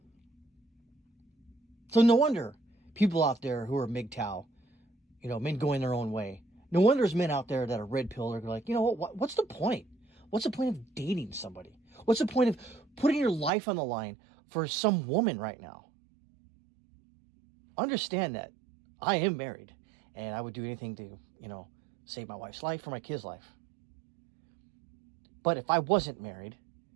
So no wonder people out there who are MGTOW, men going their own way. No wonder there's men out there that are red pill. They're like, you know what? What's the point? What's the point of dating somebody? What's the point of putting your life on the line for some woman right now? Understand that I am married, and I would do anything to, save my wife's life or my kid's life. But if I wasn't married,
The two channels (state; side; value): drops out; left; at 13.5 s